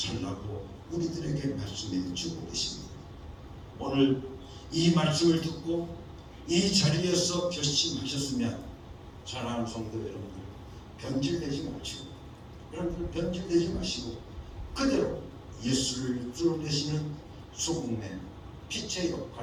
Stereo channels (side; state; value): both; identical; correlation 1.00